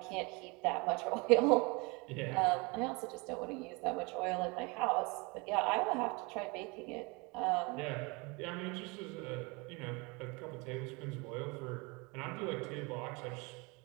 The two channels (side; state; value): left; quieter; 27.8 dB